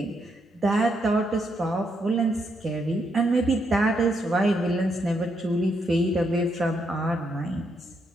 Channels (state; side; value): normal; both; correlation 0.78